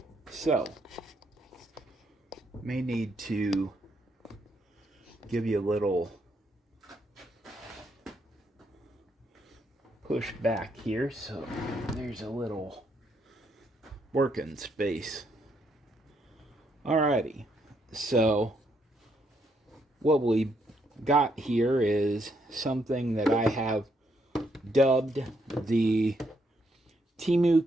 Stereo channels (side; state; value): both; normal; correlation 0.75